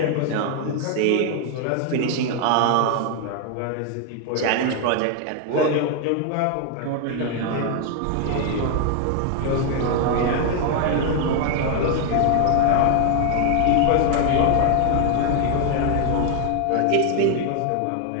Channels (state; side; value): different; both; correlation 0.00